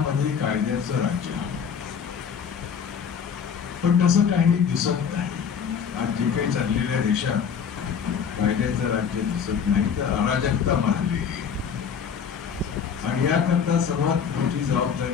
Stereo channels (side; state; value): right; quieter; 7.0 dB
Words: कायद्याचं राज्य हवं. पण तसं काही दिसत नाही. आज जे काही चाललेल्या देशात कायद्याचं राज्य दिसत नाही तर अराजकता मारली. आणि याकरता सर्वात मोठी